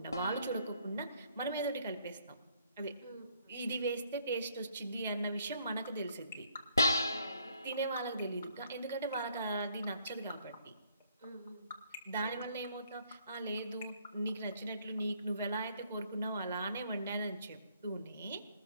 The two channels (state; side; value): inverted; both; correlation -0.66